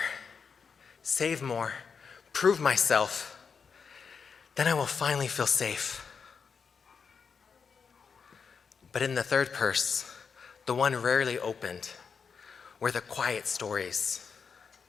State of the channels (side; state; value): right; quieter; 5.9 dB